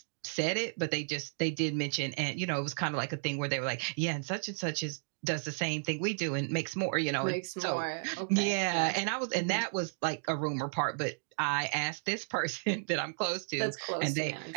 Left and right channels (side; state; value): left; silent; digital silence